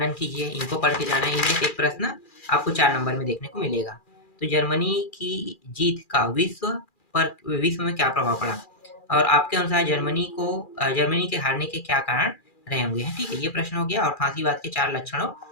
कीजिए, इनको पढ़ के जाना है। इनमें से एक प्रश्न आपको 4 नंबर में देखने को मिलेगा। तो जर्मनी की जीत का विश्व में क्या प्रभाव पड़ा, और आपके अनुसार जर्मनी के हारने के क्या कारण रहे होंगे। ठीक है, ये प्रश्न हो गया। और फांसीवाद के 4 लक्षणों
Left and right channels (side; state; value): right; late; 2.4 ms